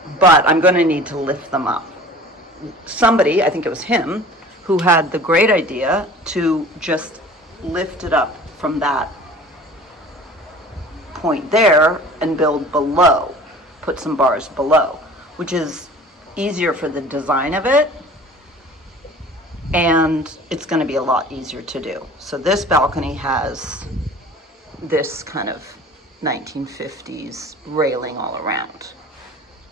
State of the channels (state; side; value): normal; both; correlation 0.44